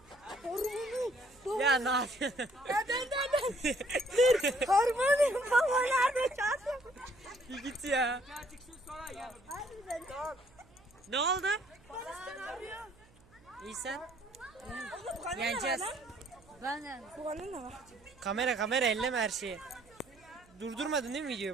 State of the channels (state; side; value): noise; right; hum, 28 dB below the sound